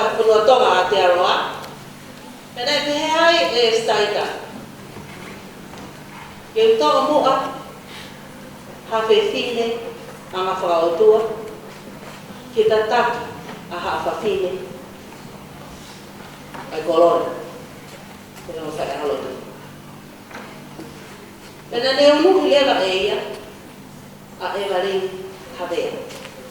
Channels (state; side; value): identical; both; correlation 1.00